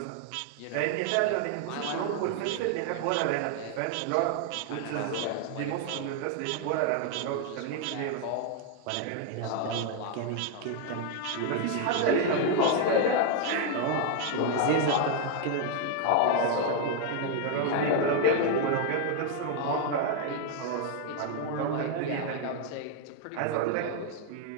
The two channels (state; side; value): different; both; correlation 0.00